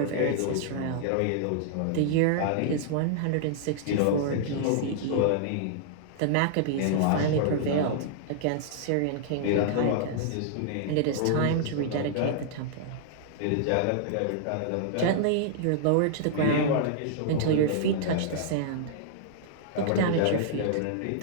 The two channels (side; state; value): both; different; correlation -0.01